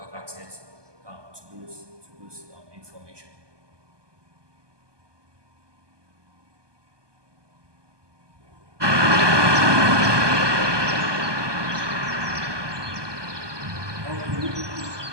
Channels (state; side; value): late; left; 1.2 ms